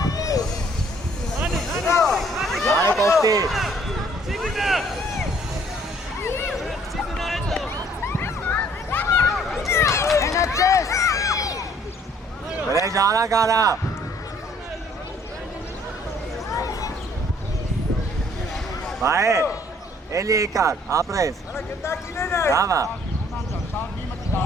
Vay Kosti. Böyle jara kara. Vay. Eli ekar. Apres. Bravo.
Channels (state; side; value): normal; both; correlation 0.60